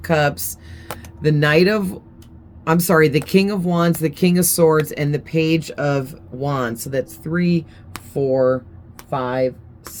Cups, the the King of Wands, the King of Swords, and the Page of Wands. So that's 3, 4, 5,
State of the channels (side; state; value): both; identical; correlation 1.00